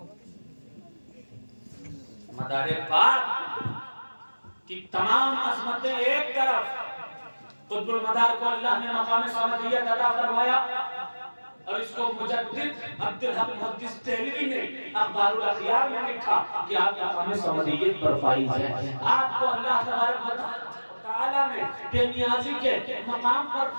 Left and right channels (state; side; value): inverted; both; correlation -1.00